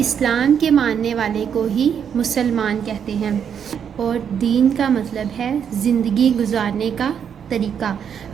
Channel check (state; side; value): quieter; left; 7.9 dB